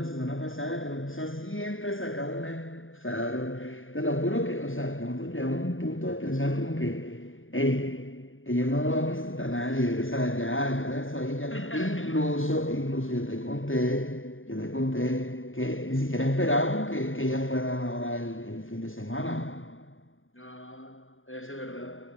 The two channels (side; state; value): right; late; 0.59 ms